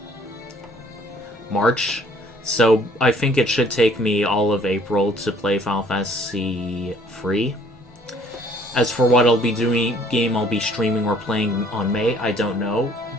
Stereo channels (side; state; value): both; normal; correlation 0.58